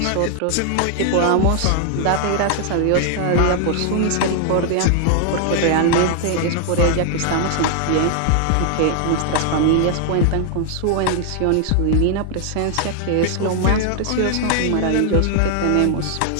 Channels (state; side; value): different; both; correlation 0.00